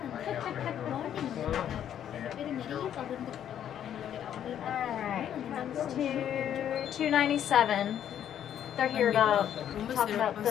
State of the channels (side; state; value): right; quieter; 10.0 dB